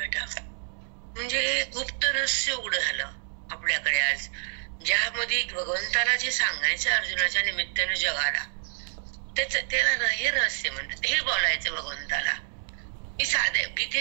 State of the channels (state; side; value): silent; left; 59 dB below the other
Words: म्हणजे गुप्त रहस्य उघड झालं आपल्याकडे आज, ज्यामध्ये भगवंताला जे सांगायचं अर्जुनाच्या निमित्ताने जगाला, त्याला हे रहस्य म्हणतात. हे बोलायचं भगवंताला. ही साधे